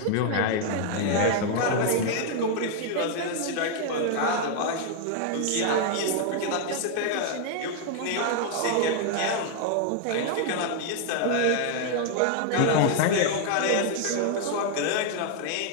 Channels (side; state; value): both; different; correlation 0.00